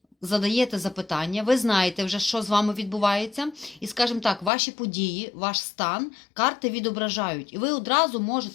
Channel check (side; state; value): right; drops out; at 4.5 s